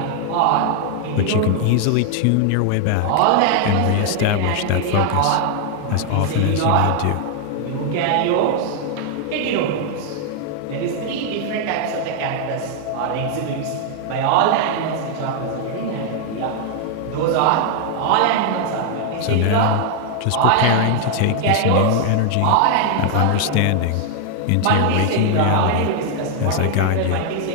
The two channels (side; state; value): both; different; correlation 0.00